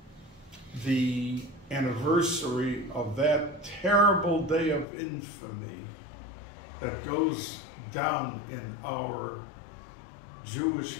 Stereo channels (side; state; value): right; drops out; at 4.9 s